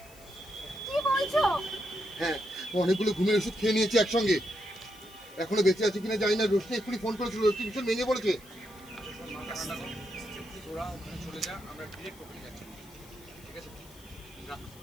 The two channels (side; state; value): left; noise; hiss, 22 dB below the sound